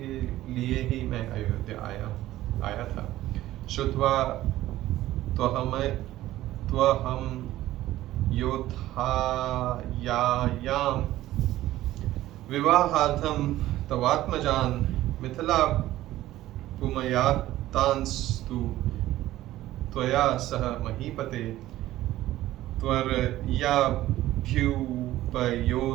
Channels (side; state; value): left; quieter; 15.1 dB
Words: लिए ही मैं अयोध्या आया था। श्रुत्वा त्वहं योद्धायायां विवाहार्थं तवात्मजान् मिथिला पुमयातांस्तु त्वया सह महीपते